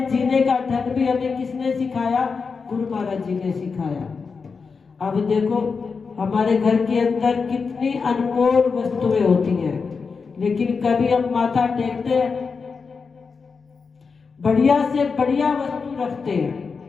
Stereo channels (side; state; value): right; quieter; 5.1 dB